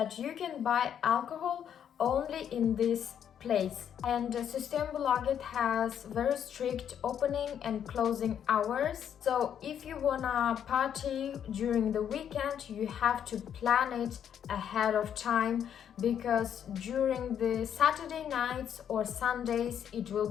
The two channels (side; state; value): right; quieter; 8.9 dB